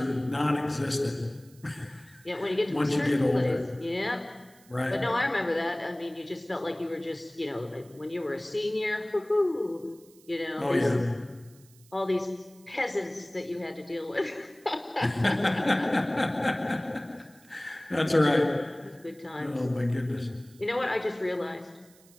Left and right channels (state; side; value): noise; right; hiss, 27 dB below the sound